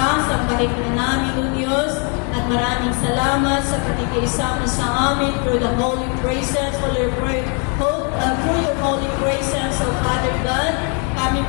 sambahin ka namin, O Diyos, at maraming salamat sa pakikiisa mo sa amin through the holy presence, through your holy presence, O Father God. Kami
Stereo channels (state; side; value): quieter; right; 37.7 dB